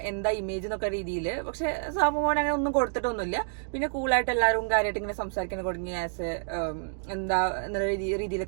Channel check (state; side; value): silent; left; digital silence